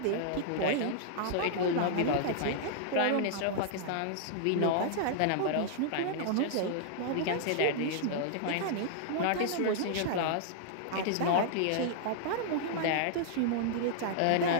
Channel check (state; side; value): different; both; correlation -0.01